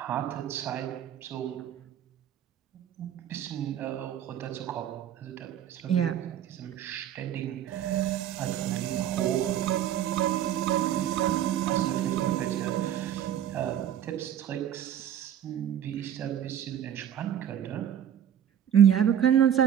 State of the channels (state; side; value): quieter; left; 10.1 dB